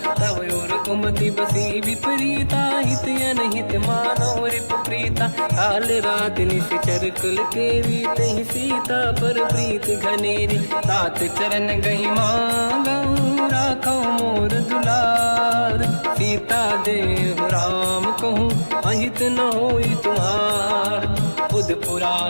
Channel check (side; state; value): both; inverted; correlation -1.00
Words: तव और कुमति बसी विपरीता, हित अनहित मानव रिप प्रीता। काल रात निश्चर कुल केरी, तहि सीता पर प्रीत घनेरी। तात चरण गही मांगऊ, राखो मोर दुलार। सीता देहु राम कहूँ, अहित न होई तुम्हार। बुध